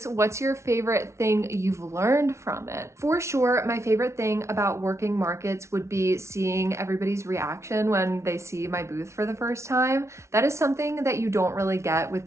What's your favorite thing you've learned from it? For sure, my favorite thing about working markets would be seeing everybody's reaction when they see my booth for the first time. That is something that you don't really get with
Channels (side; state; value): left; late; 0.13 ms